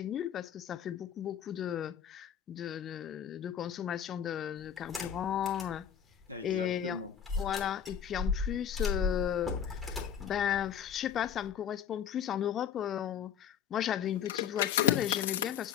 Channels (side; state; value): right; quieter; 8.8 dB